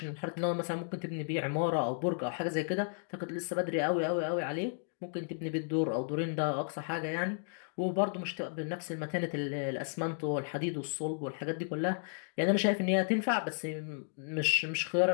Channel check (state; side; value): silent; right; digital silence